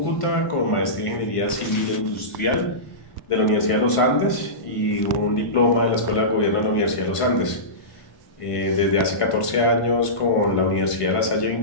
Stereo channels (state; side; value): late; right; 1.5 ms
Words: con maestría en Ingeniería Civil e Industrial de la Universidad de los Andes y un diploma de la Escuela de Gobierno de la Universidad de los Andes. Desde hace 14 años con la Universidad de La Salle